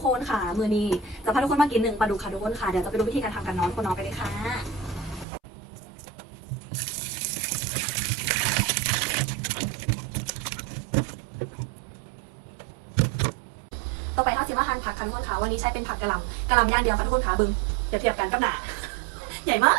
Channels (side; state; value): left; drops out; at 5.2 s